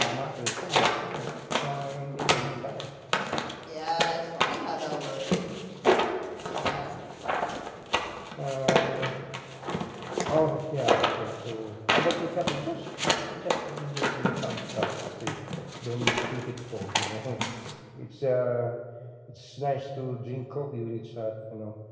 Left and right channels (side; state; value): both; identical; correlation 1.00